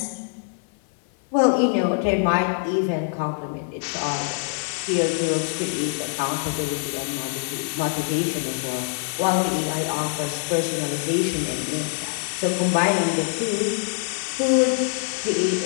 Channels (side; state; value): right; silent; 57 dB below the other